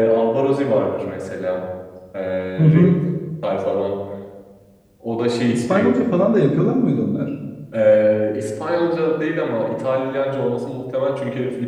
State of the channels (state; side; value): identical; both; correlation 1.00